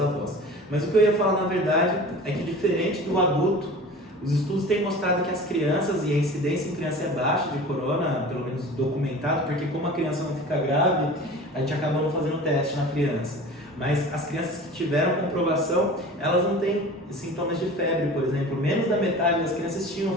Mas o que eu ia falar na verdade é que, diferente do adulto, os estudos têm mostrado que as crianças, e a incidência em criança é baixa de corona, pelo menos documentado, porque como a criança não fica grave, a gente acaba não fazendo teste na criança. Mas as crianças que tiveram comprovação, elas não têm sintomas de febre, por exemplo. Menos da metade das crianças tinham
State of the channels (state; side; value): normal; both; correlation 0.39